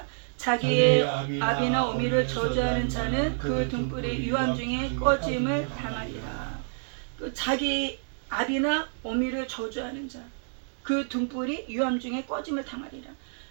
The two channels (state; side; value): silent; left; digital silence